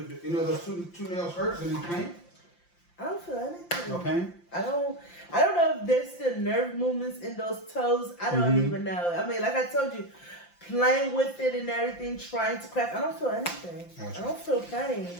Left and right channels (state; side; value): late; right; 5.8 ms